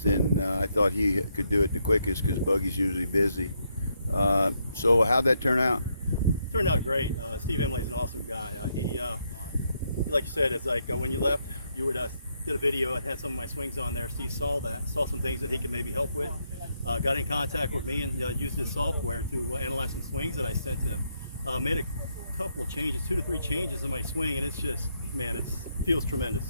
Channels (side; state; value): both; inverted; correlation -0.77